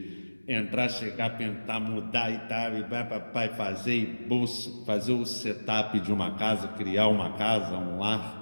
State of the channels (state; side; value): inverted; both; correlation -1.00